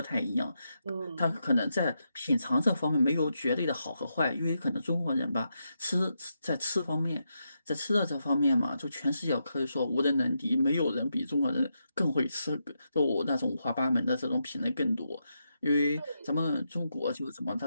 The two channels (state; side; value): inverted; both; correlation -0.84